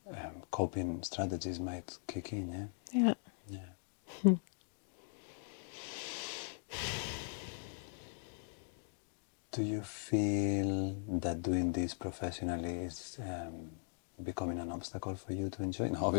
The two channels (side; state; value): right; silent; digital silence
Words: coping strategies might kick in, yeah? Do you feel that doing this professionally is becoming an obstacle for you to enjoy? No,